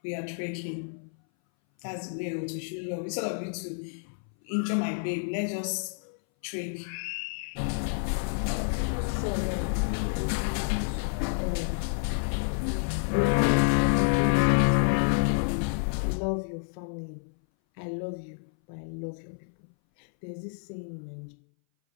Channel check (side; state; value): right; silent; 58 dB below the other